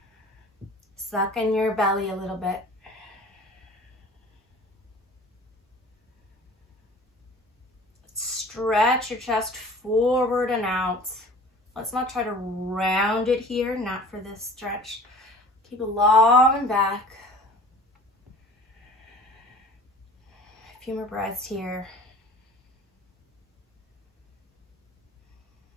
Suck in your belly a little bit. Stretch your chest forward and out. Let's not try to round it here, not for this stretch. Keep it long and back. A few more breaths here.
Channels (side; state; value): both; normal; correlation 0.44